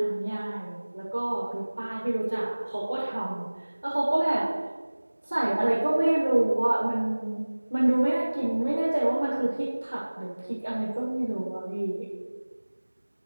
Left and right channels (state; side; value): inverted; both; correlation -1.00